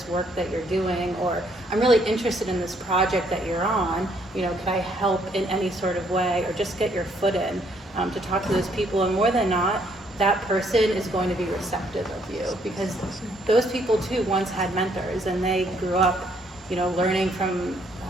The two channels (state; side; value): normal; both; correlation 0.68